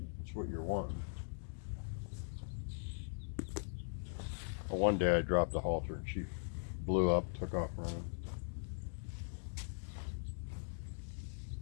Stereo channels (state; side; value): silent; right; digital silence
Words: That's what you're wanting. Well, one day I dropped the halter and she blew up, took off running.